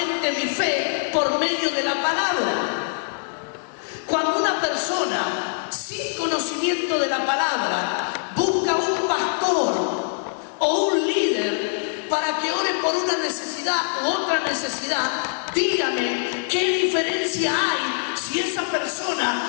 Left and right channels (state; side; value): silent; right; digital silence